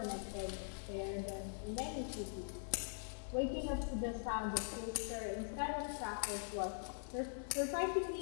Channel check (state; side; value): silent; right; digital silence